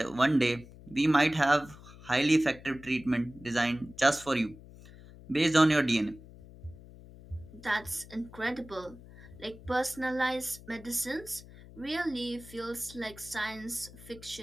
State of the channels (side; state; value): left; noise; hum, 19 dB below the sound